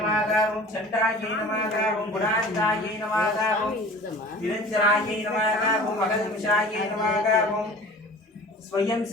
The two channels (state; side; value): normal; both; correlation 0.42